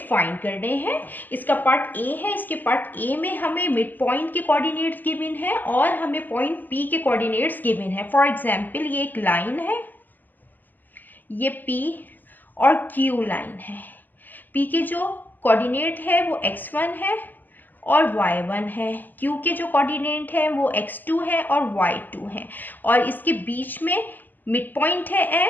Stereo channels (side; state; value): right; late; 0.087 ms